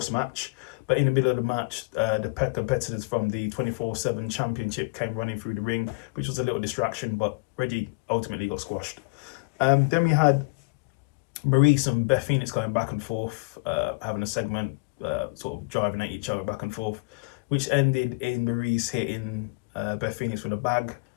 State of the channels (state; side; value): quieter; right; 29.4 dB